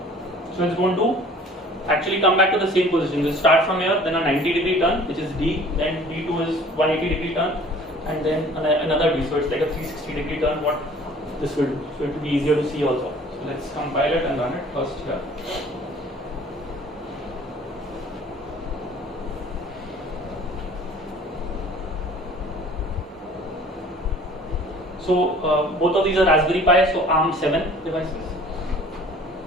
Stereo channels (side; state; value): both; normal; correlation 0.50